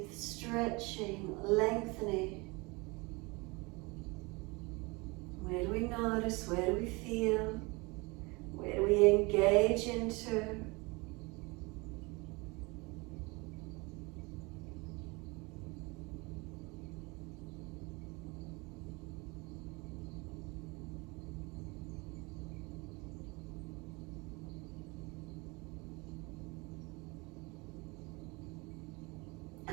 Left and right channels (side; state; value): left; quieter; 26.2 dB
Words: stretching, lengthening. Where do we notice? Where do we feel? Where do we engage into?